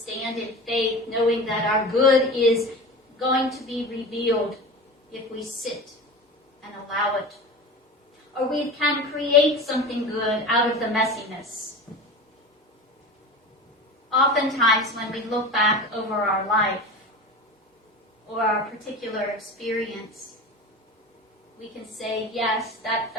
in faith, knowing that our good is going to be revealed if we sit and allow it. Or we can create something good out of the messiness. Oftentimes when we look back over our life or our particular experience, we can say, yes, that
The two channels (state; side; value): normal; both; correlation 0.31